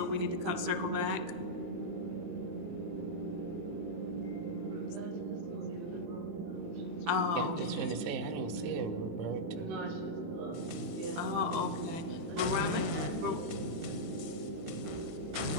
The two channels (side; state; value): left; late; 18 ms